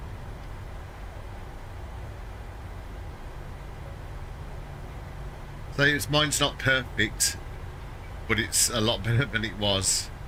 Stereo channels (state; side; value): identical; both; correlation 1.00